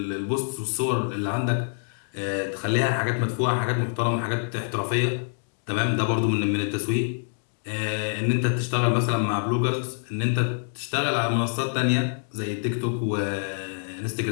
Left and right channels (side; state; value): right; silent; digital silence